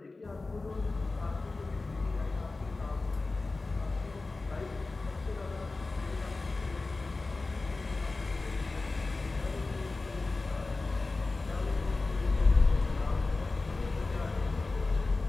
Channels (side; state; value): right; quieter; 3.5 dB